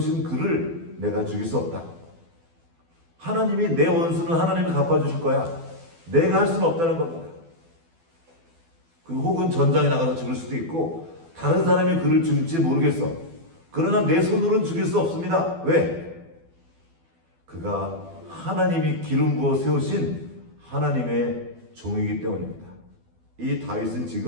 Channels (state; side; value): late; left; 12 ms